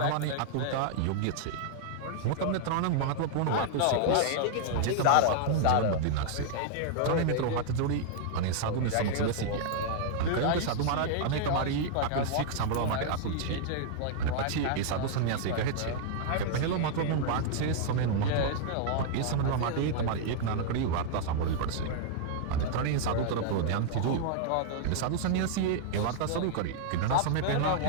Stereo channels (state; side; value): different; both; correlation -0.01